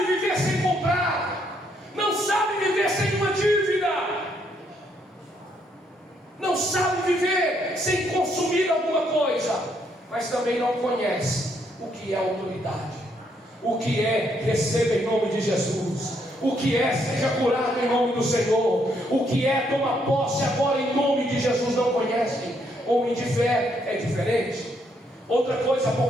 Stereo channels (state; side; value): normal; both; correlation 0.73